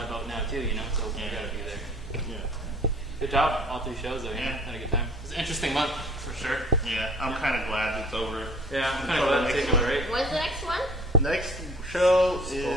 boat now too, so we got to be there. Yeah. Good job, all 3 shows though. Yeah. Had a good time. It was an interesting month for sure. Yeah. I'm kind of glad it's over. Yeah, I'm kind of glad to take it, right? When's the next one? Next show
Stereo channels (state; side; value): normal; both; correlation 0.51